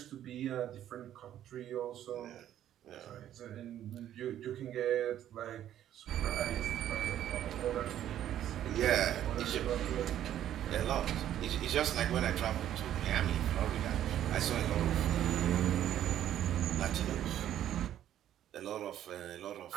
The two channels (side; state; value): left; quieter; 11.4 dB